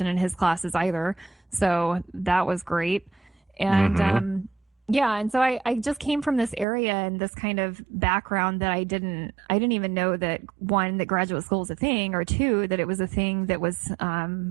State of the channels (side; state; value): left; drops out; at 6.7 s